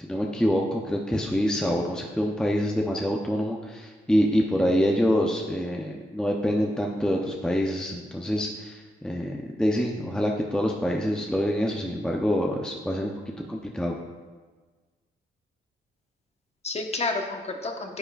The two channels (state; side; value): normal; both; correlation 0.85